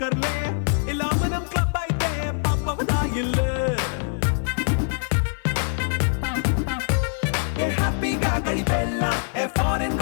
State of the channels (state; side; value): silent; right; 56 dB below the other